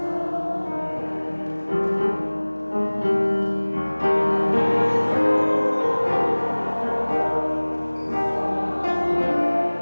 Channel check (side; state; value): both; inverted; correlation -1.00